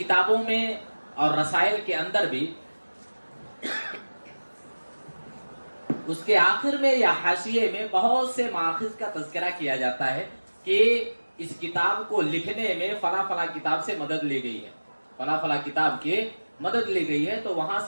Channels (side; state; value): both; inverted; correlation -1.00